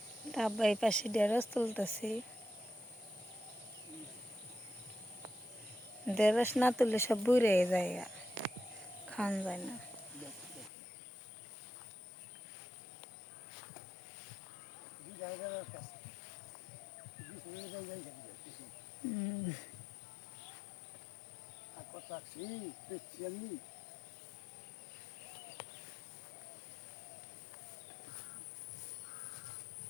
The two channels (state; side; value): drops out; right; at 10.7 s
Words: আব্বা এই পাশে ঢেঁড়স তুলতেছে। ঢেঁড়স না তুললে সব বুড়ে যায়, খাওয়ান যায় না।